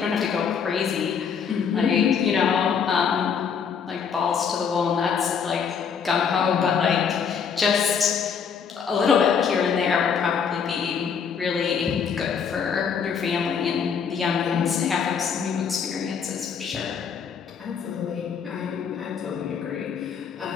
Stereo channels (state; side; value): quieter; right; 6.8 dB